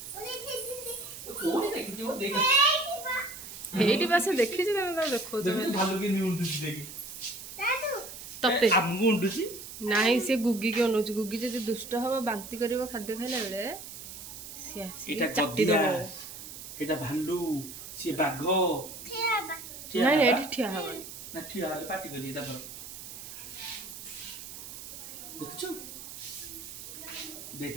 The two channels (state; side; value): noise; right; hiss, 12 dB below the sound